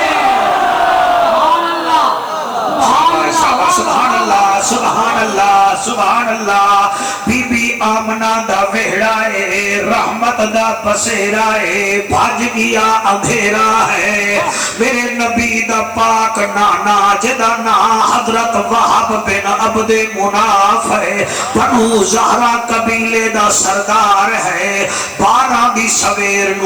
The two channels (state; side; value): noise; right; hiss, 26 dB below the sound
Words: سبحان اللہ سبحان اللہ سبحان اللہ بی بی آمنہ دا وہڑا ہے رحمت دا بسیرا ہے بھاج گیا اندھیرا ہے میرے نبی دا پاک نانا جدا نا حضرت وہب بن عبد مناف ہے بنو زہرا قبیلے دا سردار ہے 12 دی سویر